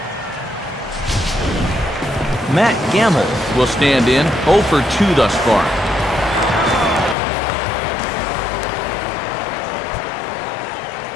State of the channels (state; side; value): drops out; right; at 7.2 s